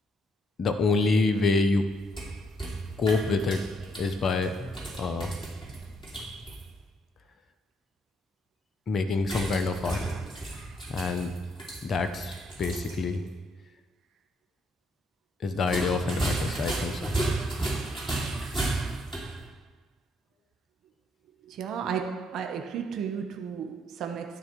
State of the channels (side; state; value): both; normal; correlation 0.73